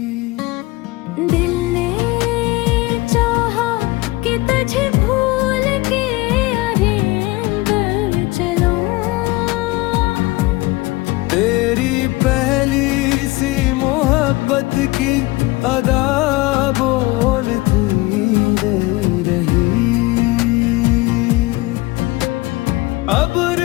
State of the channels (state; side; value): quieter; right; 21.3 dB